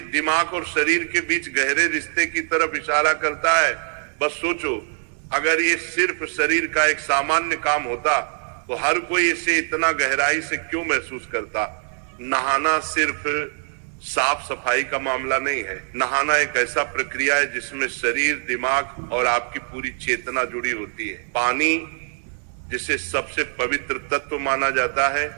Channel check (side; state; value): left; silent; digital silence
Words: दिमाग और शरीर के बीच गहरे रिश्ते की तरफ इशारा करता है? बस सोचो, अगर ये सिर्फ शरीर का एक सामान्य काम होता तो हर कोई इसे इतना गहराई से क्यों महसूस करता? नहाना सिर्फ साफ सफाई का मामला नहीं है। नहाना एक ऐसा प्रक्रिया है जिसमें शरीर, दिमाग और आपकी पूरी चेतना जुड़ी होती है। पानी, जिसे सबसे पवित्र तत्व माना जाता है,